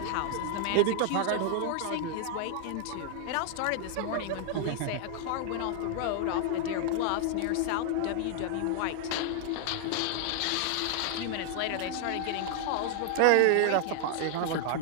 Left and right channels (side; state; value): both; different; correlation 0.00